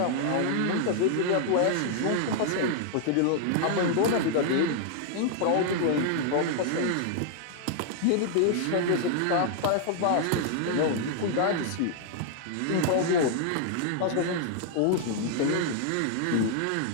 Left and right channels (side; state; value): both; different; correlation 0.00